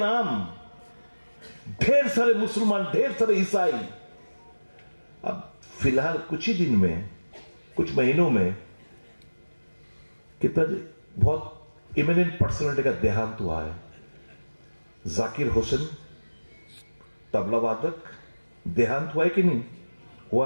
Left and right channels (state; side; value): inverted; both; correlation -1.00